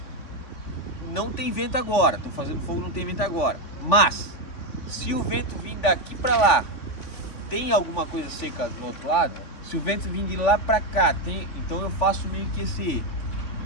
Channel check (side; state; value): right; late; 3.5 ms